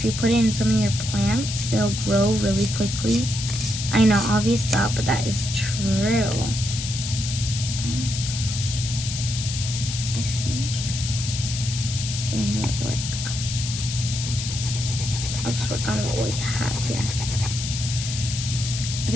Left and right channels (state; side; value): noise; left; hiss, 6 dB below the sound